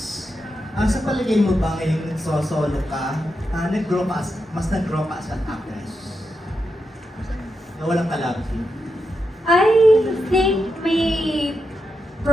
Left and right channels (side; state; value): both; normal; correlation 0.86